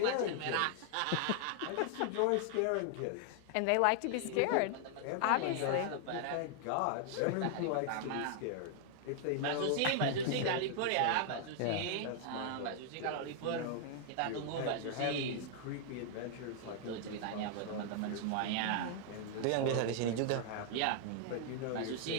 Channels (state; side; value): different; both; correlation 0.00